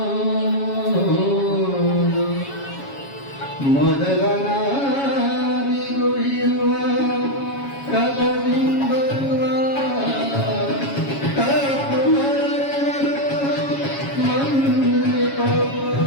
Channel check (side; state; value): right; late; 7.2 ms